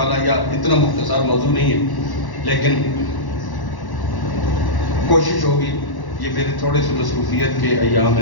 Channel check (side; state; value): right; late; 1.1 ms